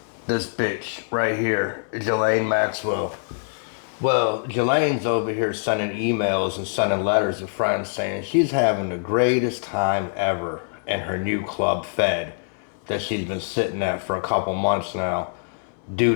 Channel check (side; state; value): right; silent; digital silence